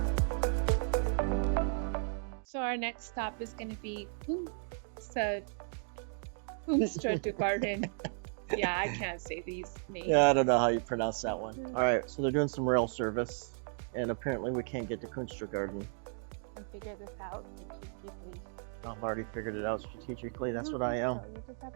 So our next stop is going to be Kungsträdgården. Yeah, I can't say these names. Yeah, I don't know how you pronounce that one. All right, so they're doing some rail service, and apparently we can't get to Kungsträdgården. And figure this out strategically. I've already figured it out strategically. That's don't what I think am. So. You just have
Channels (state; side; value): silent; left; 55 dB below the other